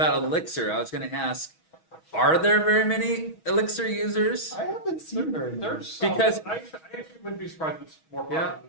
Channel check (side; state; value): right; late; 6.2 ms